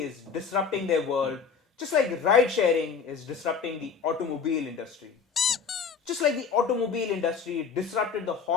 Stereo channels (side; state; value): right; quieter; 5.9 dB